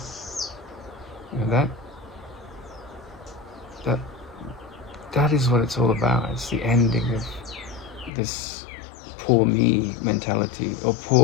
You know, that is what it's all about. It's the ending of this poor me mentality, or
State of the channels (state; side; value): drops out; right; at 8.1 s